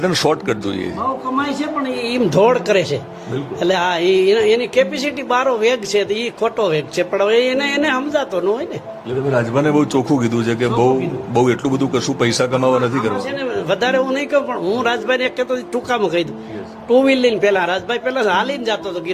શોર્ટકટ જોઈએ છે. બહુ કમાય છે પણ એમ ધોડ કરે છે. એટલે આ એની કેપેસિટી બારો વેગ છે, એ ખોટો વેગ છે, પણ હવે એને સમજાતો ન હોય ને. એટલે તમે રાજભાને બહુ ચોખ્ખું કીધું છે કે બહુ એટલું બધું કશું પૈસા કમાવા નથી કરવા છે ને. વધારે હું નહીં કહું, પણ હું રાજભાઈ ને એક કહેતો ટૂંકામાં કહી દઉં. ટુ વ્હીલ લઈને પેલા રાજભાઈ પેલા હાલીને જતો હતો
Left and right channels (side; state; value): both; identical; correlation 1.00